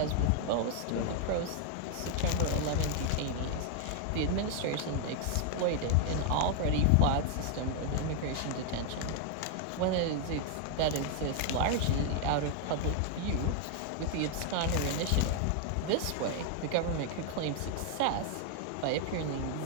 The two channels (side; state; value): both; different; correlation 0.00